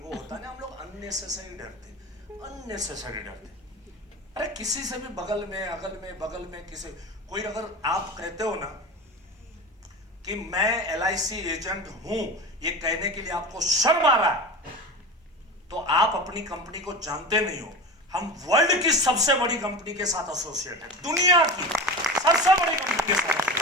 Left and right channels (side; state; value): both; normal; correlation 0.29